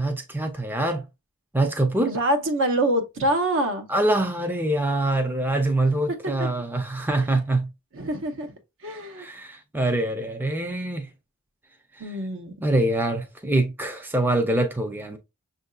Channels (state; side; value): normal; both; correlation 0.57